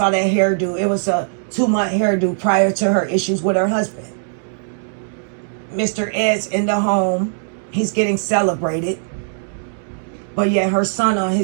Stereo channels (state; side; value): silent; left; 66 dB below the other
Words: that hairdo. It was a 2-month hairdo prior to her issues with her husband. Mr. Ed's in the home. He's getting celebrated. But yet her son on